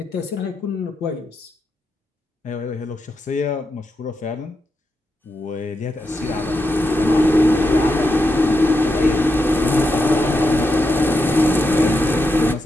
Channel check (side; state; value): both; normal; correlation 0.86